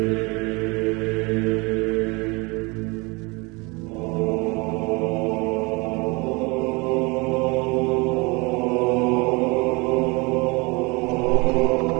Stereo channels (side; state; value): left; quieter; 27.3 dB